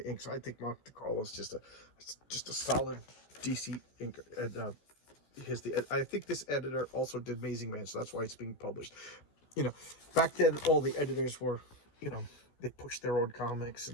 ink. So I think Mike DeCarlo is just a solid DC ink. And I think this editor also did Amazing Man, so that's why it's being published. You know, back then all the editors were, they pushed their own comics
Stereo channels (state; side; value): late; right; 14 ms